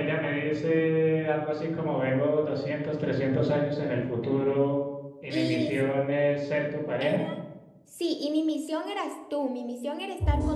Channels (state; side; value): identical; both; correlation 1.00